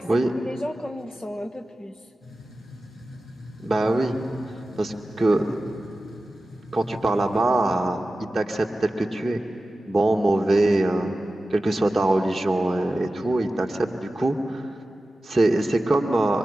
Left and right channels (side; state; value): both; normal; correlation 0.94